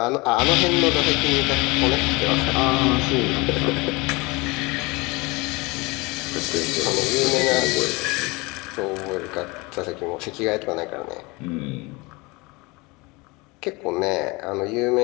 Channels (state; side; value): quieter; right; 25.1 dB